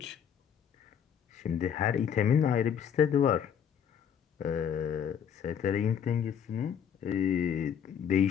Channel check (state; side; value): quieter; right; 8.2 dB